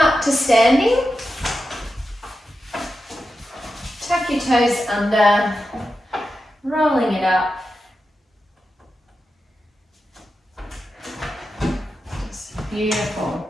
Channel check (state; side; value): normal; both; correlation 0.90